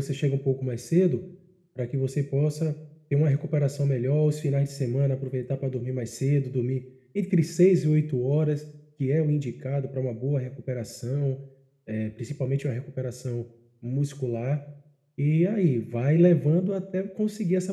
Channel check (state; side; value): identical; both; correlation 1.00